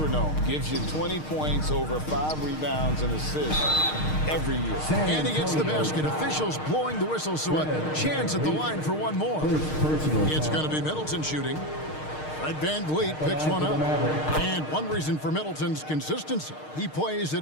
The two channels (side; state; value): right; late; 6.5 ms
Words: Gives you 20 points, over 5 rebounds and assists every year. And he gets the basket. Officials blowing the whistle, so a chance at the line for one more. It's going to be Middleton shooting. Fred VanVleet picks one up. And one reason for Middleton's consistency, he plays at